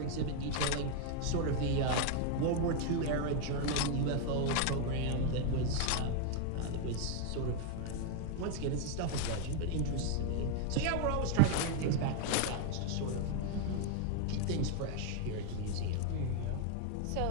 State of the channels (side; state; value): both; different; correlation 0.00